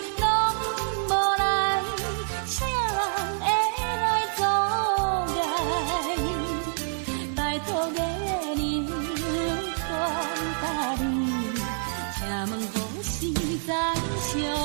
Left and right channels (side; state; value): left; silent; digital silence